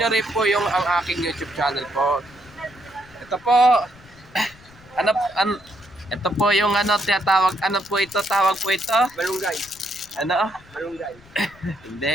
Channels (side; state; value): left; noise; rumble, 24 dB below the sound